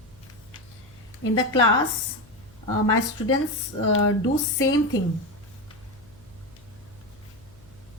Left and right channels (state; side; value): noise; left; hum, 25 dB below the sound